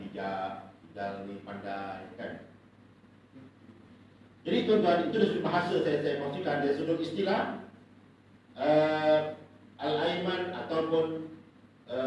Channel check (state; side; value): identical; both; correlation 1.00